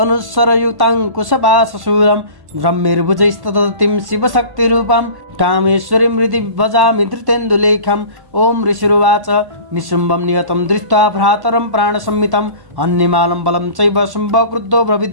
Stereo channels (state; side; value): late; left; 1.1 ms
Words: कुशपाशशूलं ब्रह्मिर्भुजैस्तदतिं शिवशक्तिरूपां कामेश्वरीं हृदि भजामि धृतेन्दुलेखम्। ओम ऋषिरुवाच निशुम्भं नियतं दृष्ट्वा भ्रातरं प्राणसंहितम् अन्यमालं बलं चैव शुम्भक्रुद्धो